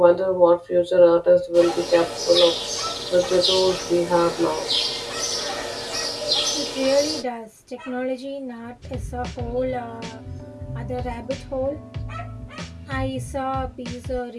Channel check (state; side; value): identical; both; correlation 1.00